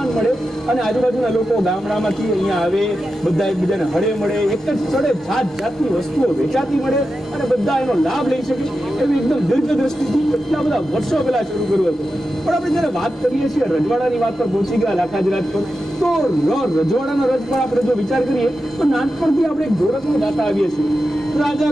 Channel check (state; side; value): normal; both; correlation 0.90